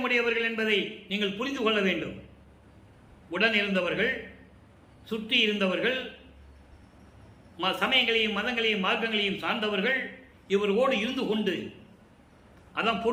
என்பதை நீங்கள் புரிந்து கொள்ள வேண்டும். உடன் இருந்தவர்கள், சுற்றி இருந்தவர்கள், சமயங்களையும் மதங்களையும் மார்க்கங்களையும் சார்ந்தவர்கள் இவரோடு இருந்து கொண்டு, அதான்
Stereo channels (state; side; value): identical; both; correlation 1.00